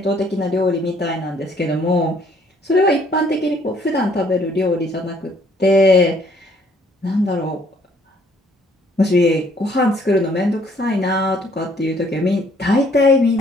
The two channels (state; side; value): normal; both; correlation 0.63